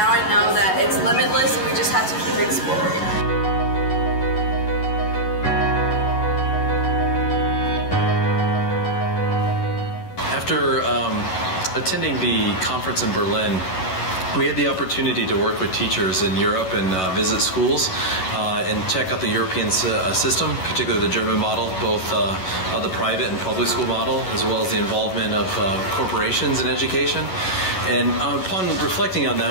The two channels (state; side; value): late; right; 11 ms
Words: I know that it's limitless and we just have to keep exploring. After attending the conference in Berlin, we had the opportunity to work with teachers in Europe and visit schools and check out the European system, particularly the German model, both the private and public school model, as well as the involvement of corporations in education. And upon reflecting on